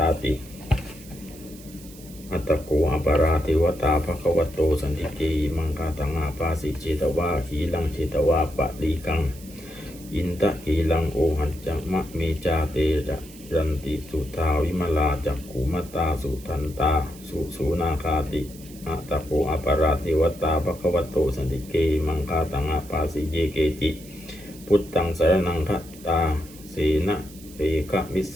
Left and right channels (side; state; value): right; noise; hiss, 20 dB below the sound